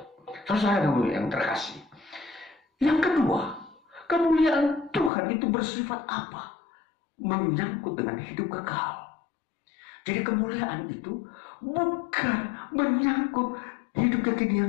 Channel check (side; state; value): right; drops out; at 5.1 s